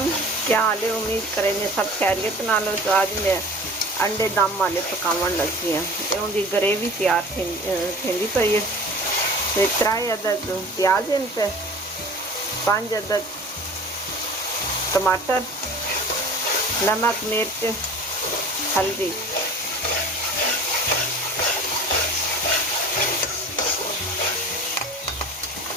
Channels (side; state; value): both; normal; correlation 0.41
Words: क्या हाल है। उम्मीद करेंगे सब खैरियत नाल हो। तो आज मैं अंडे दम वाले पकावन लगी हाँ। तो उनकी ग्रेवी तैयार थी पई है। तो 3 अदद प्याज हैं, पे 5 अदद टमाटर, नमक, मिर्च, हल्दी।